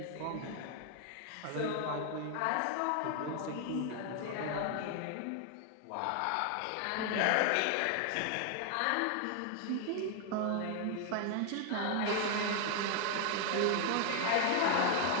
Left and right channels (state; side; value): different; both; correlation 0.00